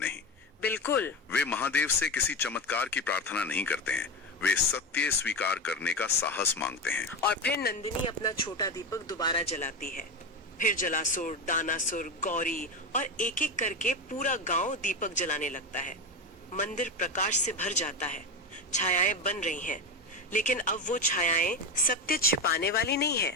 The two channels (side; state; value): both; normal; correlation 0.18